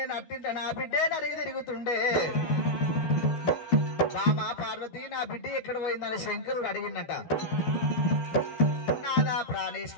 నట్టింట నా బిడ్డే నరిగి తిరుగుతుండే బామా పార్వతి నా బిడ్డ ఎక్కడ పోయిందని శంకరుడు అడిగినట నాదా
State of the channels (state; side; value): late; right; 13 ms